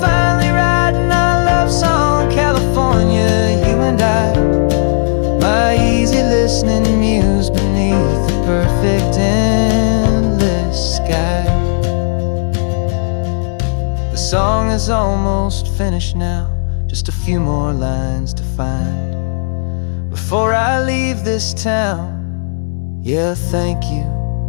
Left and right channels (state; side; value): silent; right; digital silence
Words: finally writing our love song, California, you and I, my easy listening muse beneath the perfect endless sky. is almost finished now, just a few more lines to find before I leave this town. Yeah, thank you